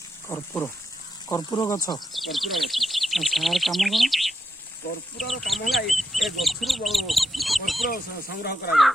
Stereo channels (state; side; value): normal; both; correlation 0.85